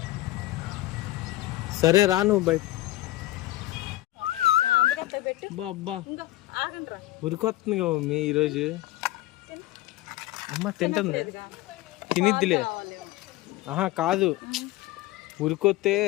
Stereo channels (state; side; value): quieter; right; 16.6 dB